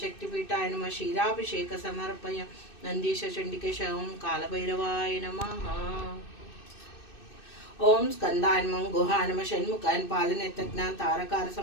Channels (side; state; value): right; late; 2.6 ms